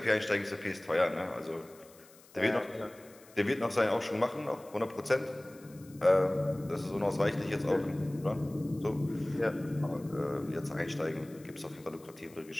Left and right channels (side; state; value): left; noise; hiss, 25 dB below the sound